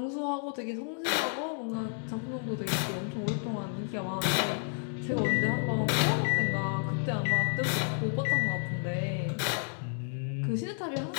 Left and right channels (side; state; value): right; silent; 57 dB below the other